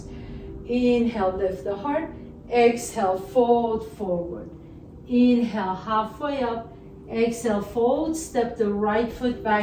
Inhale, lift the heart. Exhale, fold forward. Inhale, halfway up. Exhale, fold, step the right foot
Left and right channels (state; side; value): identical; both; correlation 1.00